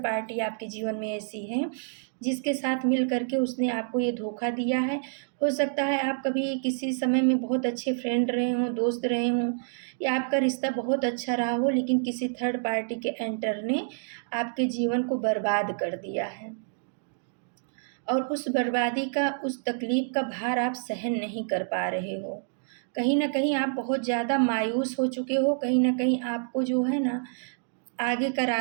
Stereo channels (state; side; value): silent; left; digital silence